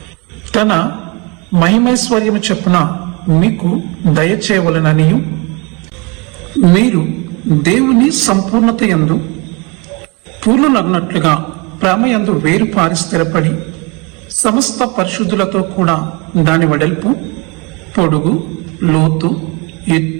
తన మహిమైశ్వర్యము చొప్పున మీకు దయచేయవలెననియు మీరు దేవుని సంపూర్ణత యందు పూర్ణులగునట్లుగా ప్రేమయందు వేరుపారి స్థిరపడి సమస్త పరిశుద్ధులతో కూడా దాని వెడల్పు, పొడుగు, లోతు,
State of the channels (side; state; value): left; quieter; 28.7 dB